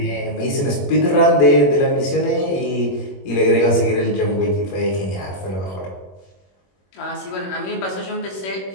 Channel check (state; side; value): late; right; 21 ms